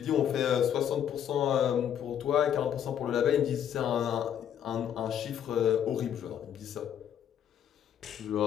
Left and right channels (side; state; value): right; quieter; 9.5 dB